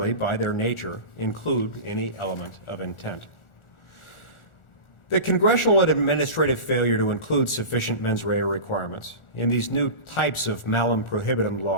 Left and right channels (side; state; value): right; late; 1.4 ms